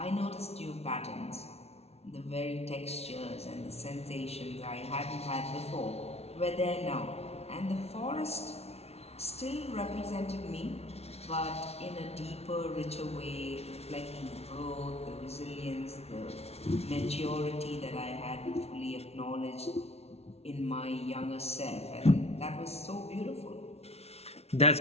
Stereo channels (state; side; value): late; right; 0.31 ms